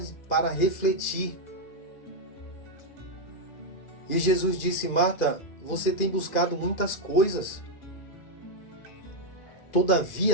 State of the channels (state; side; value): late; right; 2.4 ms